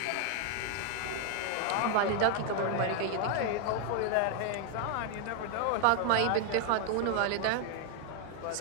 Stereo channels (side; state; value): both; different; correlation 0.00